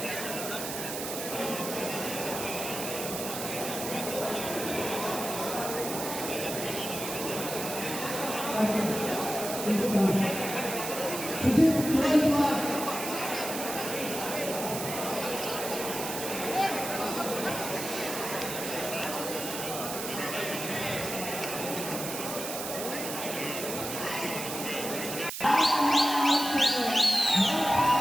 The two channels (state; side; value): noise; right; hiss, 6 dB below the sound